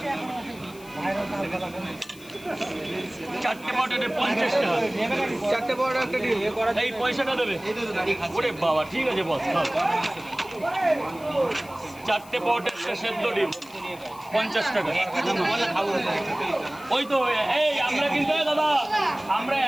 চারটে পটেটে 50 টাকা। 4টে বড় একটা ডিম এই পয়সাটা দেবে। ওরে বাবা, ঠিক আছে বস, খাও। চারটে পটেটে সেদ্ধ ডিম 50 টাকা। ওই তো এই আমরা কিন্তু দাদা আমরা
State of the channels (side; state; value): left; noise; hiss, 21 dB below the sound